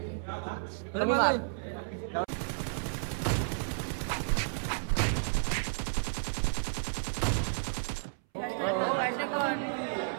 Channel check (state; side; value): silent; left; 56 dB below the other